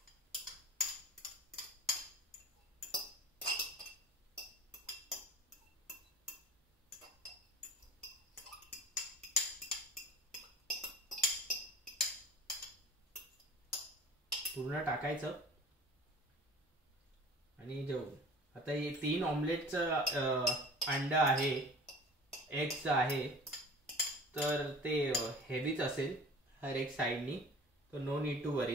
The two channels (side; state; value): both; normal; correlation 0.42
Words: पूर्ण टाकायचं. आणि आता हे 3 ऑमलेटचं अंडा आहे, एगचं आहे, तर ते हेवीच असेल हर एक साईडनी. तर नो नीड टू